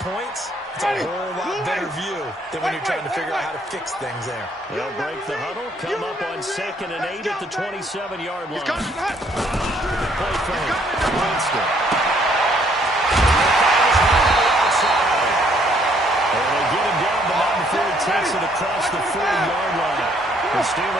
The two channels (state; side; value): normal; both; correlation 0.66